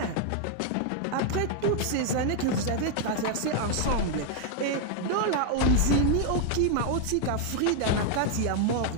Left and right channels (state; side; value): different; both; correlation 0.00